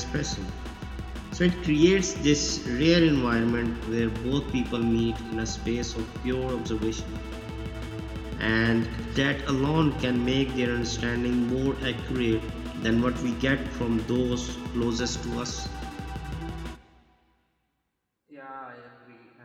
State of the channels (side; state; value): both; identical; correlation 1.00